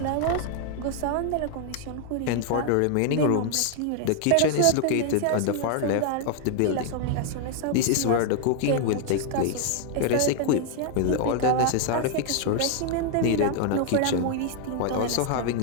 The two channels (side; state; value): both; different; correlation 0.00